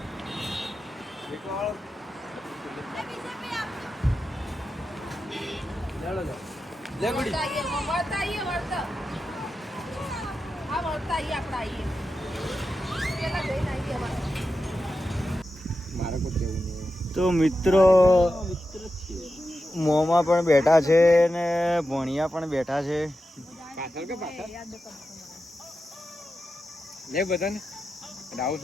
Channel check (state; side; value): normal; both; correlation 0.90